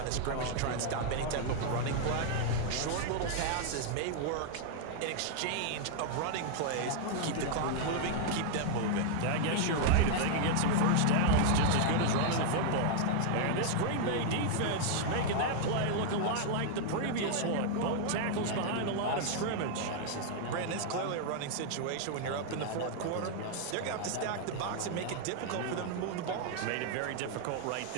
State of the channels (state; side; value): different; both; correlation 0.00